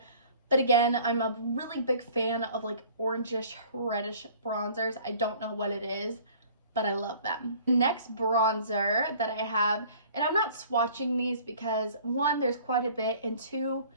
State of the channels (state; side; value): inverted; both; correlation -0.50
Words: But again, I'm a really big fan of like orangish, reddish bronzers. I don't know what it is, but I love them. Next bronzer that I have, and I'm not swatching these because one, there's quite a bit, and two,